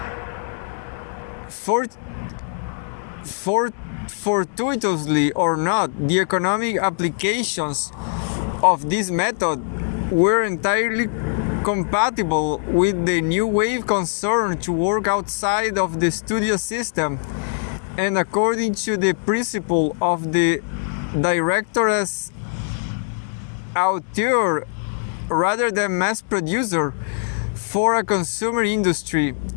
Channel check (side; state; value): right; silent; 64 dB below the other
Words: Fortuitously or not, the economic applications of this method were entirely compatible with the new wave concern to work outside of the studio system, and according to the principle of the director as auteur rather than mass producer for a consumer industry.